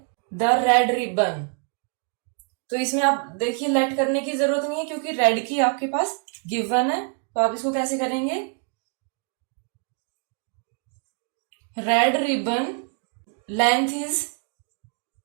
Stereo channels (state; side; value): quieter; left; 38.3 dB